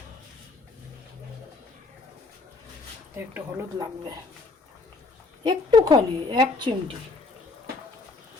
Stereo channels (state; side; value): quieter; right; 3.7 dB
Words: একটু হলুদ লাগবে একটুখানি, 1 চিমটি।